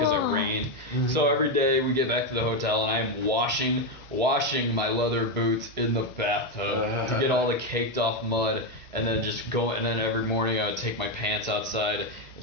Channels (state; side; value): normal; both; correlation 0.07